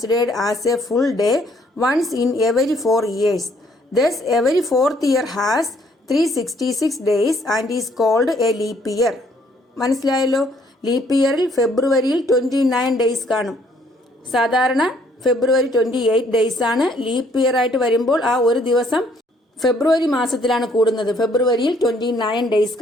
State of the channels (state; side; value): normal; both; correlation 0.65